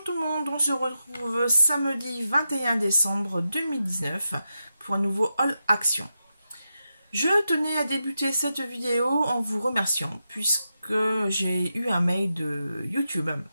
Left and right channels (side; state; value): both; inverted; correlation -0.89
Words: tout le monde, on se retrouve samedi 21 décembre 2019 pour un nouveau Haul Action. Je tenais à débuter cette vidéo en vous remerciant puisque j'ai eu un mail de YouTube